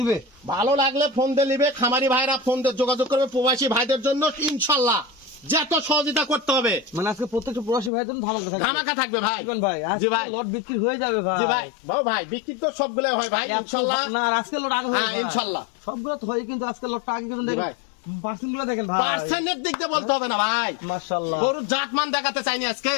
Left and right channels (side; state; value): right; drops out; at 7.9 s